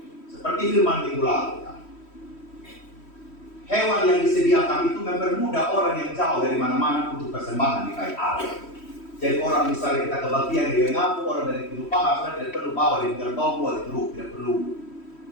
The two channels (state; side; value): late; right; 3.1 ms